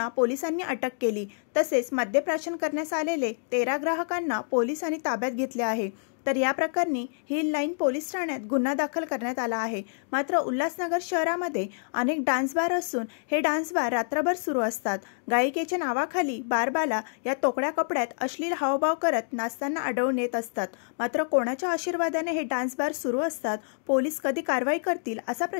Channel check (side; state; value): right; silent; digital silence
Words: पोलिसांनी अटक केली। तसेच मद्यप्राशन करण्यास आलेले 13 ग्राहकांना पोलिसांनी ताब्यात घेतले आहे। तर या प्रकरणी हिल लाईन पोलीस ठाण्यात गुन्हा दाखल करण्यात आला आहे। मात्र उल्हासनगर शहरामध्ये अनेक डान्स बार असून हे डान्स बार रात्रभर सुरू असतात। गायिकेच्या नावाखाली बारबाला या तोकड्या कपड्यात अश्लील हावभाव करत नाचताना आढळून येत असतात। मात्र कोणाच्या आशीर्वादाने हे डान्स बार सुरू असतात? पोलीस कधी कारवाई करतील असा